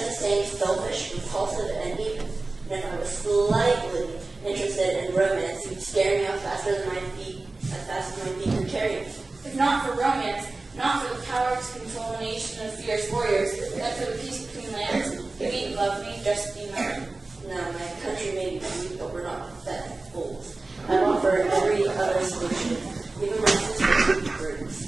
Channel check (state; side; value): quieter; left; 3.3 dB